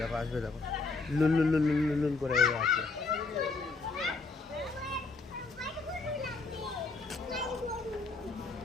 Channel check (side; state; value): right; quieter; 3.8 dB